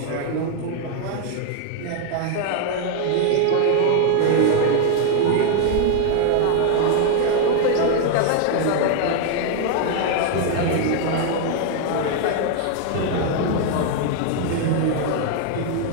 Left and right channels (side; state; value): both; different; correlation 0.00